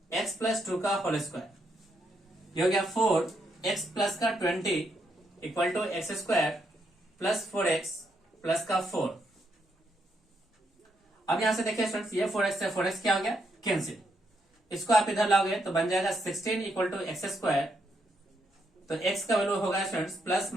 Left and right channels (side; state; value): both; normal; correlation 0.78